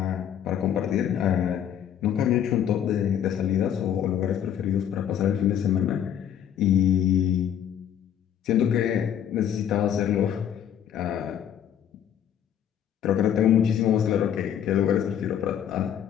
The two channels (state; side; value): quieter; right; 9.5 dB